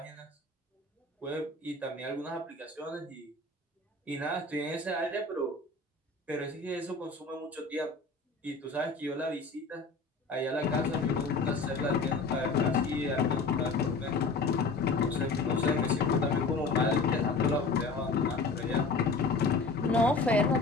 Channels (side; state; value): right; quieter; 3.8 dB